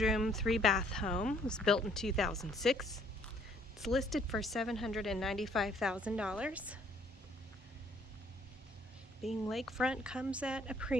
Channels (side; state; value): both; normal; correlation 0.63